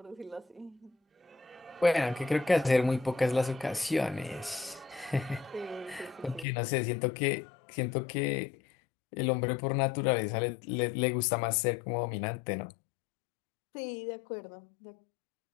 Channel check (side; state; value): right; drops out; at 6.5 s